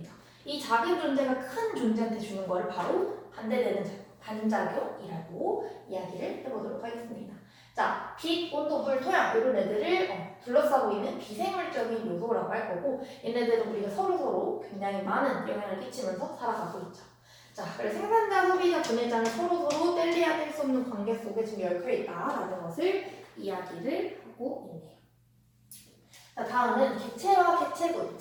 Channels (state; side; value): identical; both; correlation 1.00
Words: 이 작은 존재가 큰 존재한테 주는 걸 바로 반대되는 반작용이라고 이야기를 해보도록 하겠습니다. 자, 빛, 온도, 물, 토양 이런 애들을 둘러싸고 있는 비생물적인 요소라고 할 거고 얘네들은 우리가 서로서로 굉장히 많은 영향을 끼치면서 살아가고 있죠. 자, 그래서 생산자, 소비자, 분해자는 서로서로 뗄래야 뗄 수 없는 관계 속에 지금 얽혀 있다라는 것을 이야기를 하고 있네요. 자, 다음은 객체와 객체군,